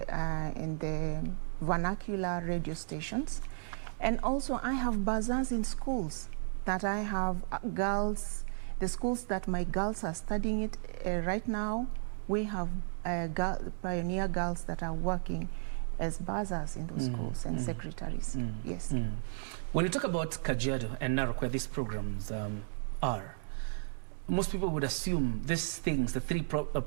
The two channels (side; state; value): left; silent; digital silence